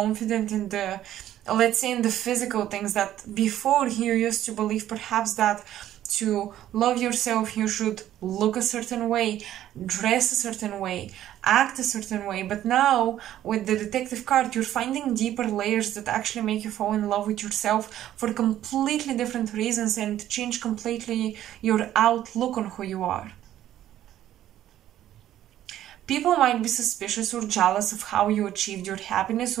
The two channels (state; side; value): quieter; left; 12.4 dB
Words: in the, let's say, in the physical things that before you used to believe perhaps that to love yourself you should look a certain way, dress a certain way, act a certain way. But now with the detective card, you're finding deeper layers that actually make you fall in love with yourself for completely different reasons and change completely your outlook on who you are. People might be suspicious or jealous of how you achieved your happiness,